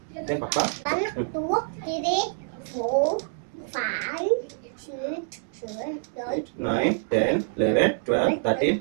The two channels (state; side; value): silent; left; digital silence